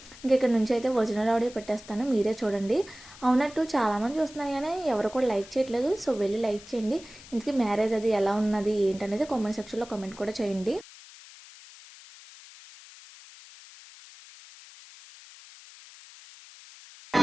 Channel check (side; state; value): left; noise; hiss, 19 dB below the sound